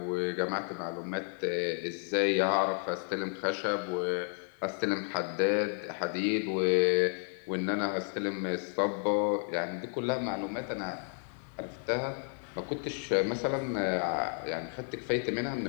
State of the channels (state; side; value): silent; right; 56 dB below the other